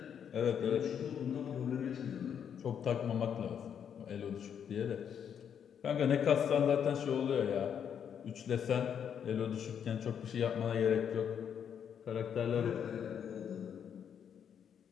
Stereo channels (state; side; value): quieter; right; 8.2 dB